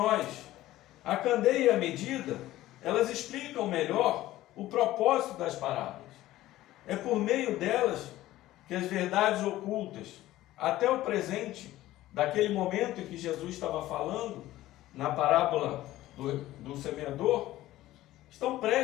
A candeia e a medida, elas explicam melhor o propósito das parábolas. É por meio delas que as verdades ocultas, até o presente, daquele momento em que Jesus estava falando, na parábola do semeador, estão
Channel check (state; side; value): quieter; right; 15.5 dB